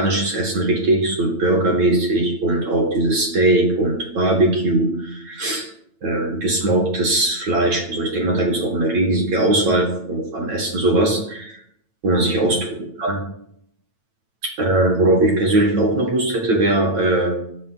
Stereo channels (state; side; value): late; left; 9.0 ms